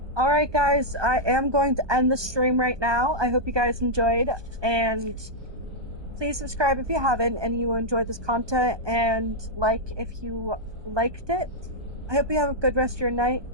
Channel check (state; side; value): late; left; 1.2 ms